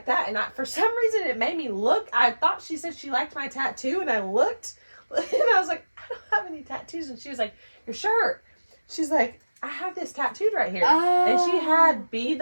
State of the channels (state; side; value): inverted; both; correlation -1.00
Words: that, and for some reason it made me look. I thought she said she liked my tattoo, and I looked, and I was like, I don't have any tattoos. And she was like, your shirt. She's like, I have this tattooed right here. And she had Be